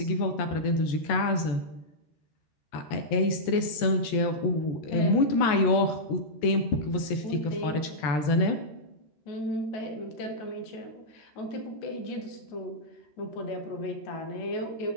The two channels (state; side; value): late; right; 13 ms